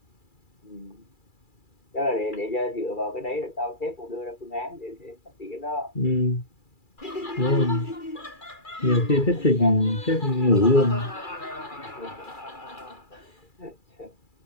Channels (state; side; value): late; right; 2.3 ms